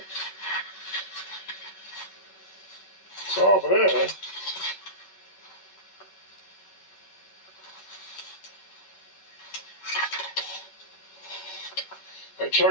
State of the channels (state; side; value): late; right; 11 ms